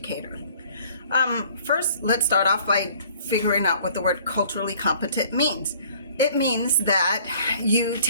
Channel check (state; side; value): inverted; both; correlation -0.55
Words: First, let's start off by figuring out what the word culturally competent means. It means that you